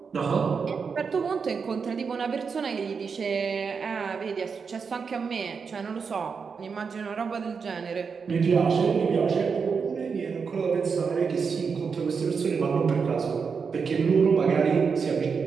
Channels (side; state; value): left; quieter; 5.6 dB